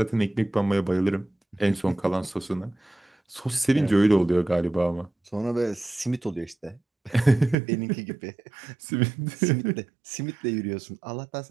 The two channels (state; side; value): drops out; left; at 7.6 s